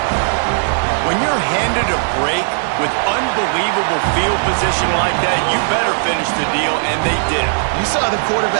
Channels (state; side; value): silent; left; 68 dB below the other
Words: When you're handed a break with unbelievable field position like that, you better finish the deal, and they did. You saw the